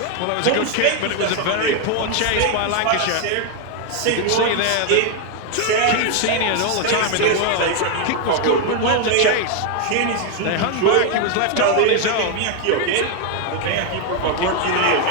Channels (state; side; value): different; both; correlation 0.01